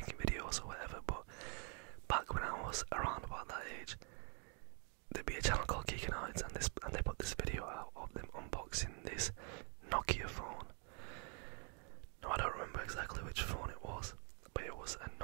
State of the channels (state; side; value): quieter; left; 39.9 dB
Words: videos or whatever, but back when I was around about that age, there'd be a channel called Geekanoids, and they put this video out of them unboxing this Nokia phone. No, I don't remember exactly which phone it was, but it was a